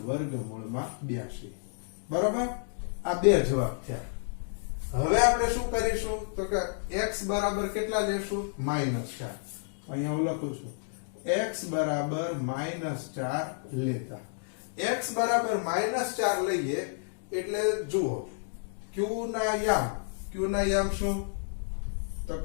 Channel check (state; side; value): silent; right; digital silence